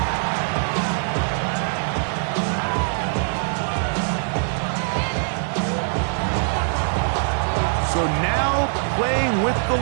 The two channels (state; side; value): silent; left; digital silence